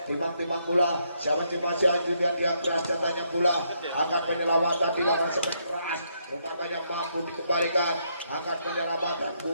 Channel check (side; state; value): both; inverted; correlation -0.75